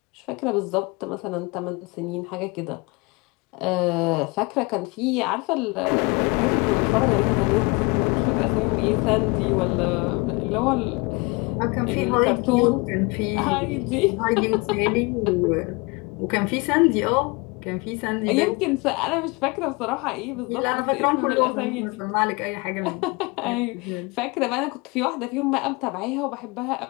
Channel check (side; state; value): right; quieter; 27.2 dB